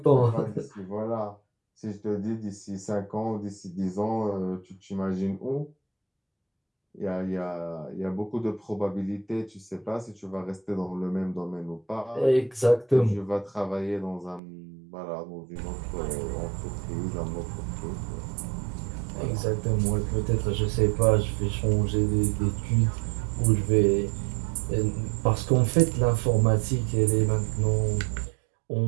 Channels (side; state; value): left; drops out; at 14.4 s